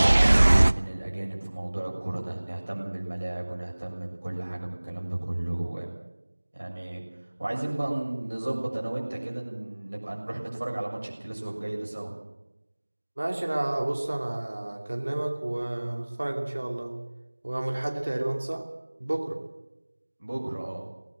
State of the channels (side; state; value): both; inverted; correlation -1.00